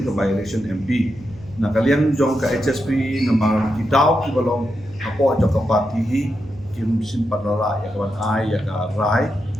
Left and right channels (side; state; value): right; noise; hum, 19 dB below the sound